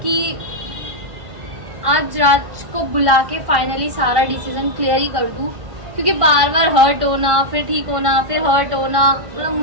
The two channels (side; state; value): left; late; 1.5 ms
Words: आज राज को बुला के फाइनली सारा डिसीजन क्लियर ही कर दूं, क्योंकि बार बार हर्ट होना, फिर ठीक होना, फिर हर्ट होना, मतलब